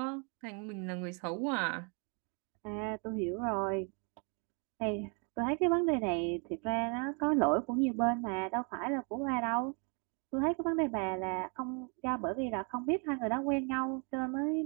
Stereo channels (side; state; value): left; quieter; 36.4 dB